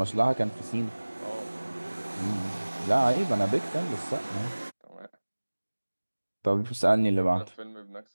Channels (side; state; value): both; inverted; correlation -1.00